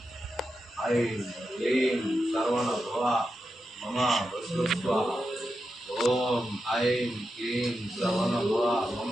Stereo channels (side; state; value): both; normal; correlation 0.88